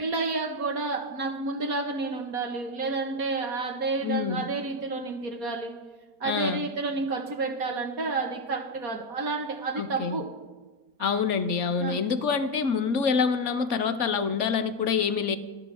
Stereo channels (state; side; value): late; left; 4.3 ms